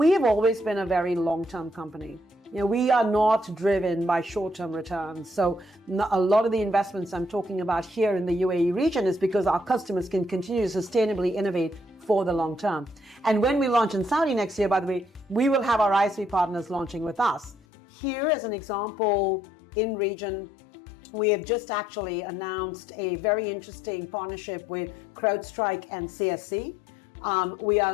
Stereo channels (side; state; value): right; drops out; at 17.6 s